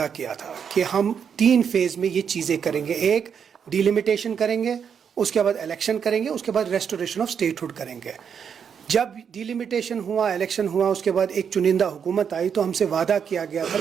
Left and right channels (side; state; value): left; quieter; 7.3 dB